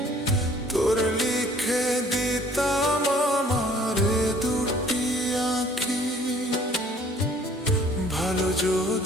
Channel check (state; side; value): normal; both; correlation 0.56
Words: তোর লিখে দিতাম আমার দুটি আঁখি। ভালো